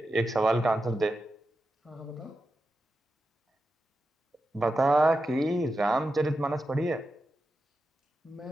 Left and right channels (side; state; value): both; normal; correlation 0.90